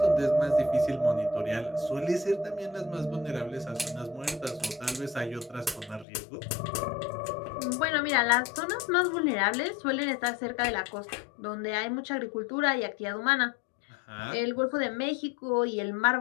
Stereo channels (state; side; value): drops out; right; at 6.1 s